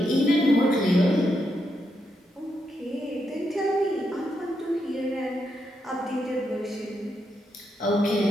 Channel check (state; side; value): normal; both; correlation 0.82